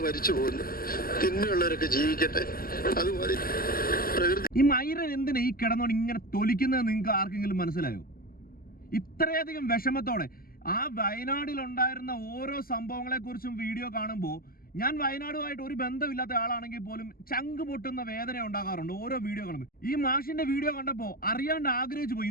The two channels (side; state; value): right; late; 0.43 ms